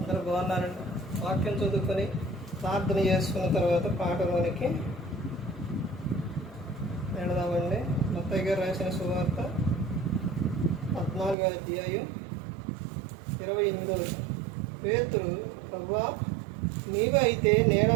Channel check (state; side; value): drops out; left; at 11.4 s